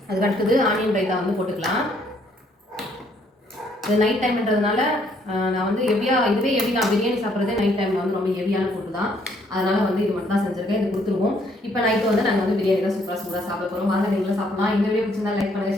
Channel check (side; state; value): both; normal; correlation 0.67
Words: அதுக்கு அடுத்தது ஆனியன் ரைத்தா வந்து போட்டுக்கலாம். இது நைட் டைம்ன்றதுனால நான் வந்து இதுவே ஹெவி தான். பிரியாணி சாப்பிட்றதே நைட் டைமில் வந்து ரொம்ப ஹெவியான ஃபுட்டு தான். அதனால் வந்து இது மட்டும் தான் செஞ்சுருக்கேன். இது கொடுத்துருவோம். இப்போ நைட்டு வந்து நாங்கள் வந்து பிரியாணி தான் சூப்பராக சாப்பிட போகிறோம். வாங்க நீங்களும் சாப்பிடலாம். இந்த வீடியோ பிடிச்சிருந்தா லைக் பண்ணுங்கள்,